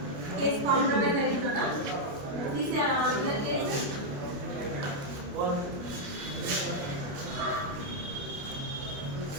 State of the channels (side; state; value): left; late; 29 ms